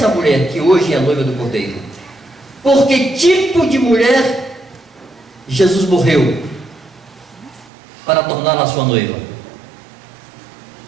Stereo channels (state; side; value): drops out; left; at 7.7 s